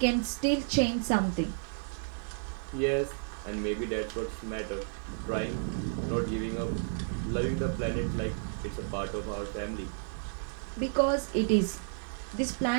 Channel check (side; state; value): left; silent; digital silence